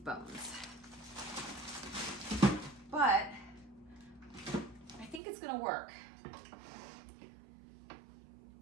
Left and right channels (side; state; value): left; drops out; at 5.2 s